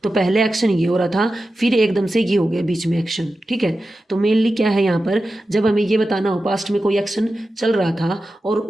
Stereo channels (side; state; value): both; normal; correlation 0.92